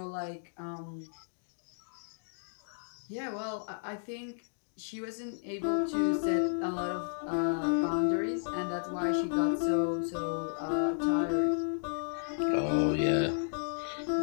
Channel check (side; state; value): right; silent; digital silence